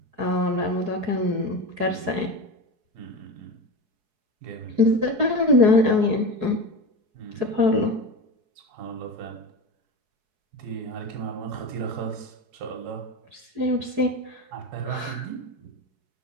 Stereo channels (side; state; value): left; late; 4.7 ms